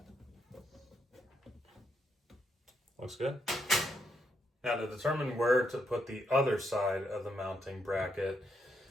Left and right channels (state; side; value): normal; both; correlation 0.78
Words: Looks good. Now to determine where to put the other side of the mounting bracket,